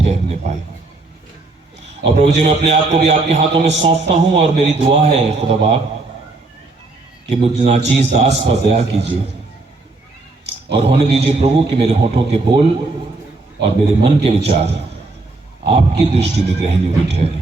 पाए। और प्रभु जी, मैं अपने आप को भी आपके हाथों में सौंपता हूं, और मेरी दुआ है खुदा बाप कि मुझ नाचीज दास पर दया कीजिए और होने दीजिए प्रभु कि मेरे होठों के बोल और मेरे मन के विचार आपकी दृष्टि में ग्रहणीय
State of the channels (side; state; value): left; quieter; 3.3 dB